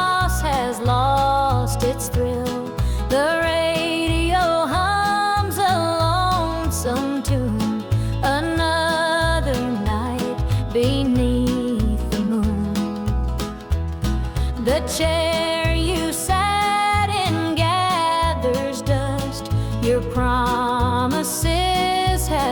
has lost its thrill. The radio hums a lonesome tune. Another night beneath the moon. The chair you sat in gathers dust. Your promises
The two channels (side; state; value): both; identical; correlation 1.00